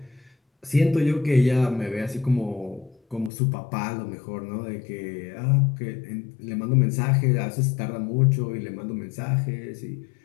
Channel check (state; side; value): drops out; right; at 3.3 s